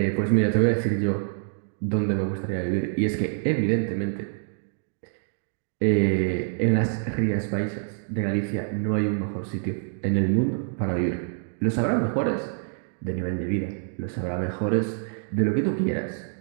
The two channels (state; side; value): silent; left; digital silence